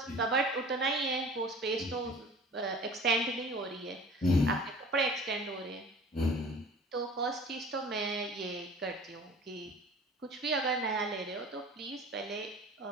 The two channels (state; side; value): normal; both; correlation 0.44